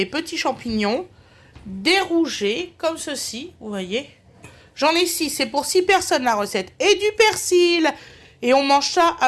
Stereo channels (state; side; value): identical; both; correlation 1.00